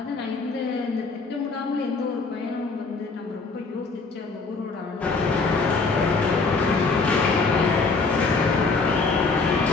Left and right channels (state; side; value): quieter; right; 4.1 dB